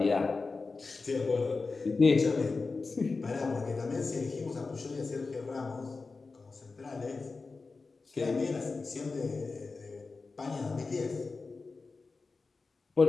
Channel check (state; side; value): quieter; right; 4.1 dB